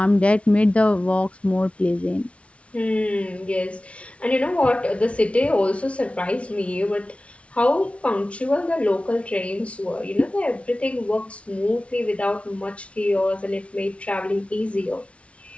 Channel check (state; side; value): late; right; 0.062 ms